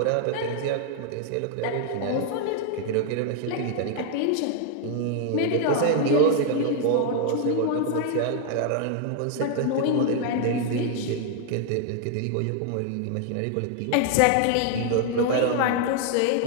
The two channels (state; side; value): different; both; correlation 0.00